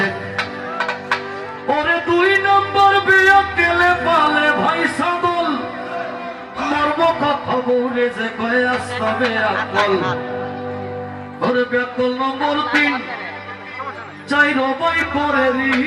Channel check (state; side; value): identical; both; correlation 1.00